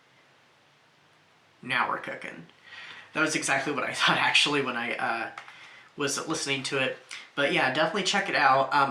now we're cooking. That was exactly what I thought actually when I was listening to it. But yeah, definitely check it out.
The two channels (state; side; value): identical; both; correlation 1.00